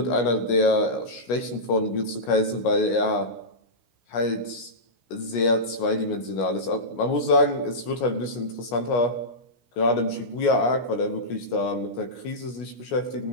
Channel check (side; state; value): right; late; 17 ms